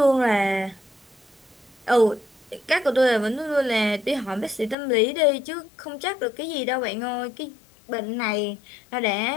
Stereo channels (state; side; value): drops out; right; at 4.8 s